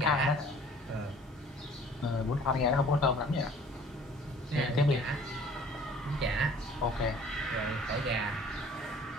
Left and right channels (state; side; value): normal; both; correlation 0.52